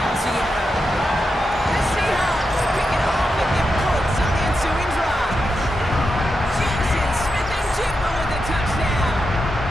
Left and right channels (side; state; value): both; normal; correlation 0.87